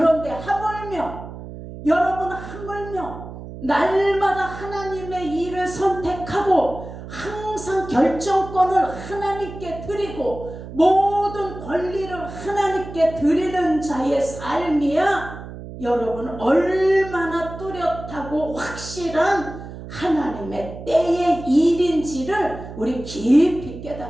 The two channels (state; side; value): noise; right; hum, 12 dB below the sound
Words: 하물며, 여러분, 하물며 날마다 하나님의 일을 선택하고 항상 결정권을 하나님께 드리고 모든 권리를 하나님께 드리는 자의 삶이야 여러분 얼마나 뚜렷하고 확실한 하나님의 때의 일인지를 우리 깊이